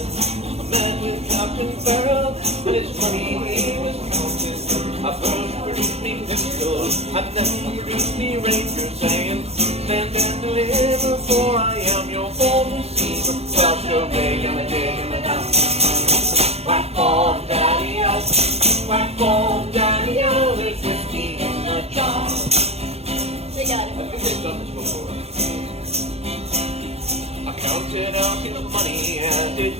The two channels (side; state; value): left; late; 0.30 ms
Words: I met with Captain Farrell, and his money he was counting. I first produced me pistol, and then produced me ranger, saying, stand and deliver, for I am your bold receiver. Well, sure, big and a dig and a down. Whack ball, daddy-o, whack ball, daddy-o, there's whiskey in the jar. They got it. I think they've done this before. I counted out his money and it